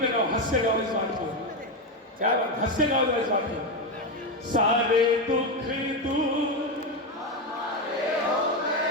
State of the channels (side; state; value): both; normal; correlation 0.11